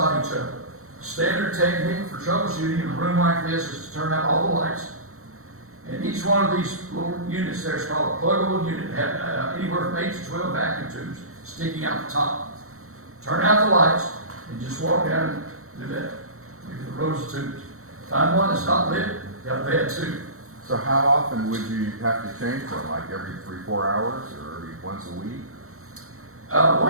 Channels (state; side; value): late; left; 0.63 ms